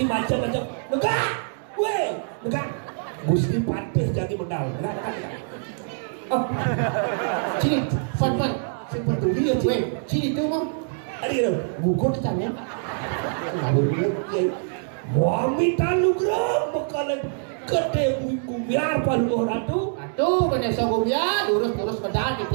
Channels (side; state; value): left; silent; digital silence